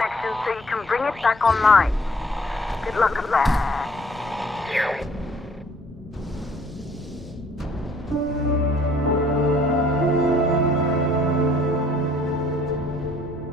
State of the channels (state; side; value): normal; both; correlation 0.59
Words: so you can bring it back online. Good luck with that.